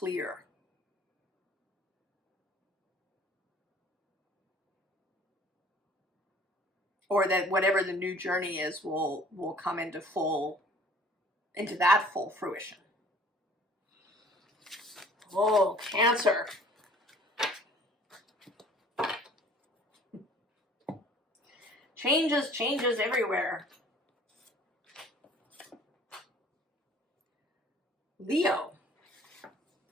Or that whatever the new journey is will come into that full fruition. Oh, Cancer. Changes everywhere. Leo.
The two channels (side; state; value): both; normal; correlation 0.52